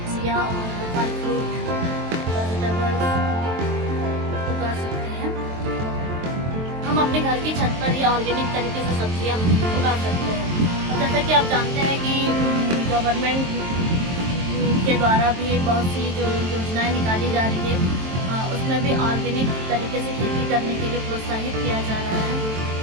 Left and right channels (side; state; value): left; late; 23 ms